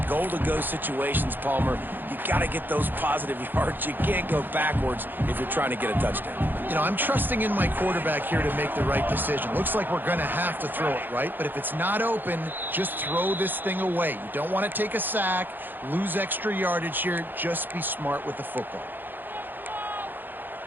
goal-to-go situations, Palmer. You got to get those positive yards. You can't go backwards if you're trying to get a touchdown. You know, I'm trusting in my quarterback here to make the right decision. Looks like we're going to have to throw it, right? But if it's not open, just throw this thing away. You don't want to take a sack, lose extra yardage here. Just be smart with the football.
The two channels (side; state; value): left; late; 0.091 ms